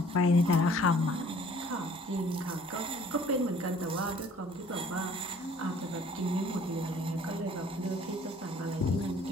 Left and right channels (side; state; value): both; normal; correlation 0.55